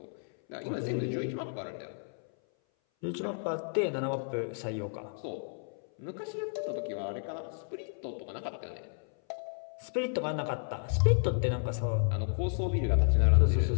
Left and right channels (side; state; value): right; silent; 56 dB below the other